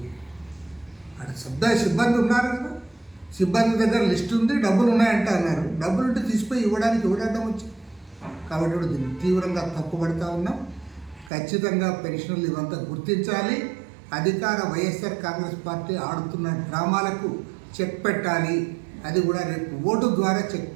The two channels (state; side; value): drops out; left; at 11.3 s